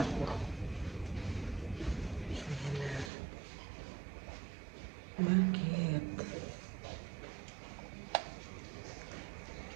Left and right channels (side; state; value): left; drops out; at 3.1 s